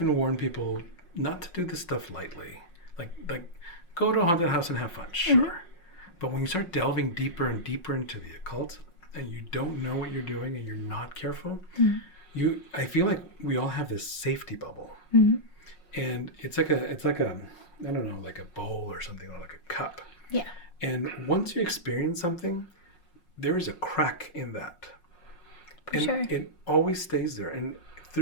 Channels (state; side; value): late; right; 5.5 ms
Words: warn people not to do this stuff lightly. Like go to a haunted house and have fun, sure. But when you start delving deeper and deeper into the occult and you don't know what you're doing and you're not careful, I feel like we all have this safety bubble. And it's like a I don't know, like a bowl or something, or like a cup. Yeah. And once you experience something, there is a crack in that. And it always stays there. And